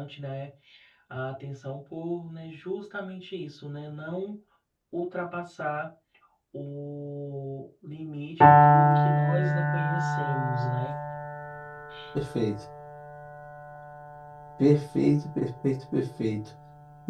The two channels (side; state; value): both; identical; correlation 1.00